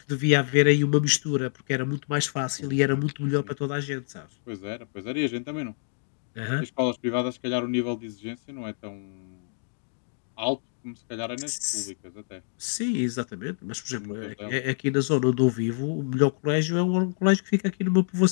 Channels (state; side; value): silent; right; digital silence